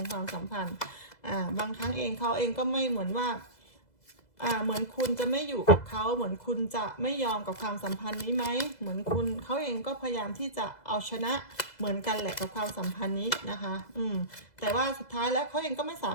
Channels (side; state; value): right; late; 2.0 ms